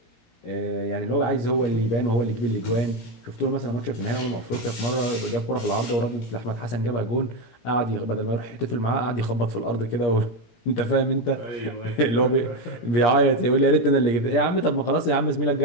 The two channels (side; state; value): right; late; 17 ms